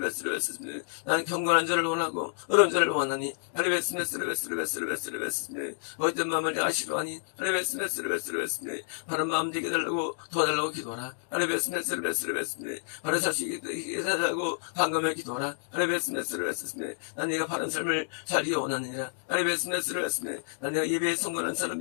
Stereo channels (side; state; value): right; silent; digital silence